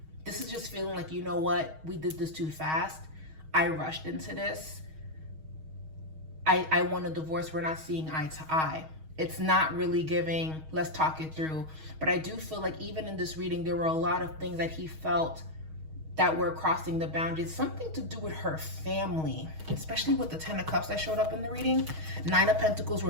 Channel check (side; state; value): left; late; 6.4 ms